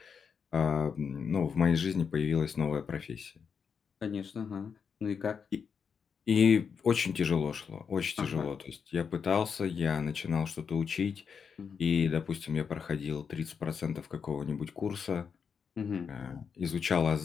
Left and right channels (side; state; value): right; quieter; 6.4 dB